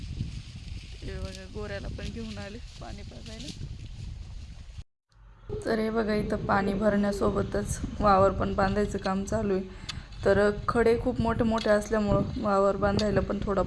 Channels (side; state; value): both; identical; correlation 1.00